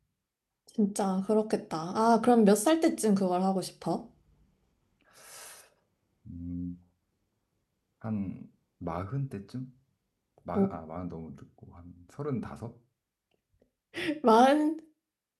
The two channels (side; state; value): both; identical; correlation 1.00